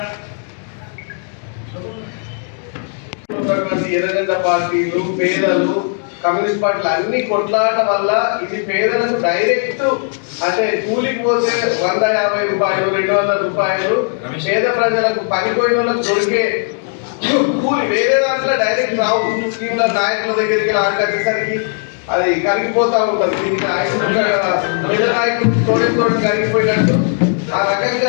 ఎర్రగడ్డ పార్టీలు, పేదలు, కమ్యూనిస్ట్ పార్టీలు అన్ని కొట్లాట వల్ల ఇది పేదలకు డైరెక్ట్ అంటే కూలికి పోతే 150 రూపాయలు, 200 రూపాయలు పేద ప్రజలకు పనిపోయిన వాళ్ళకు దొరికే కూలి వేరే దాంట్లో డైరెక్ట్ రావు. స్కీమ్ల నాయకుల దగ్గరికి ఆడకట్టేసరికి అది కరిగిపోతా ఉంటుంది. దీనికి పేద నాయకులు తోడు కరిగిపోయినట్టు ఆ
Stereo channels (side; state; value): right; silent; 58 dB below the other